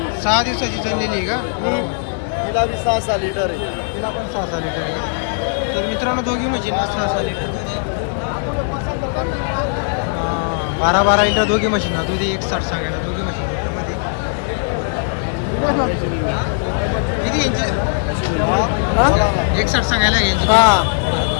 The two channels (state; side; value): silent; right; 63 dB below the other